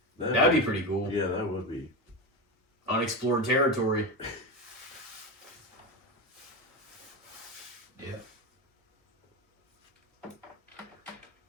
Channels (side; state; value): both; normal; correlation 0.18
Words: That'd be pretty cool. Yeah, that would be. Unexplored territory. Yeah.